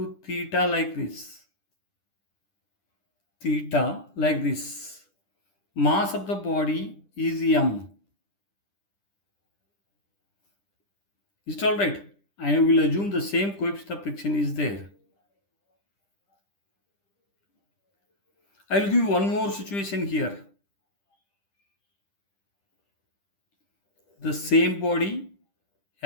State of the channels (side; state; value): right; late; 10 ms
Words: theta like this. Theta like this. Mass of the body is m. Is it alright? I will assume the same coefficient of friction is there. I will give you one more situation here. The same body